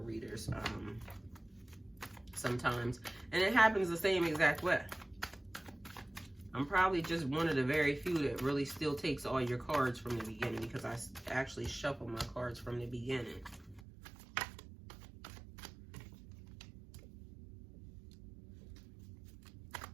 readers sometimes, and it happens the same exact way. I'm probably just one of the very few that really still takes all your cards from the beginning, because I actually shuffle my cards from the beginning.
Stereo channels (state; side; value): drops out; left; at 13.8 s